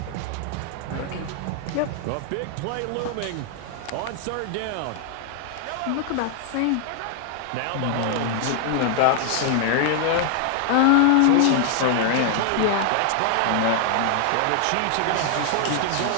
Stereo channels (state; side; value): different; both; correlation 0.00